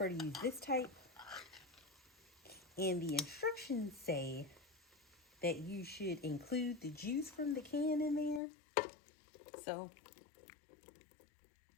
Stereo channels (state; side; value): drops out; right; at 8.4 s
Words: to use this type. And the instructions say that you should include the juice from the can in there. So